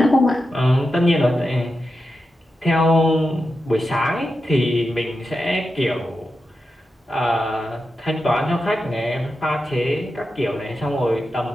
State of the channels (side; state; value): both; normal; correlation 0.89